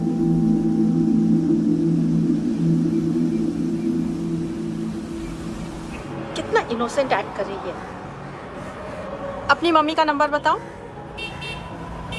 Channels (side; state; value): both; identical; correlation 1.00